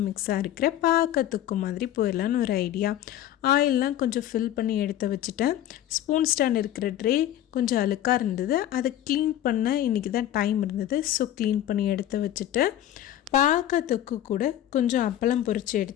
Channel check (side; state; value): right; quieter; 12.1 dB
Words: மிக்ஸாக இருக்கிற பாக்கத்துக்கு மாதிரி போயிடலான்னு ஒரு ஐடியா. ஆயிலெலாம் கொஞ்சம் ஃபில் பண்ணி எடுத்து வச்சுட்டேன். ஸ்பூன் ஸ்டாண்ட் இருக்கிற ட்ரே கொஞ்சம் அழுக்காக இருந்தது, அதை க்ளீன் பண்ண இன்றைக்கி தான் டைம் இருந்தது. ஸோ க்ளீன் பண்ணி எடுத்து வச்சுட்டு பாக்கத்துக்கு கூட கொஞ்சம் அப்பளம் பொரித்து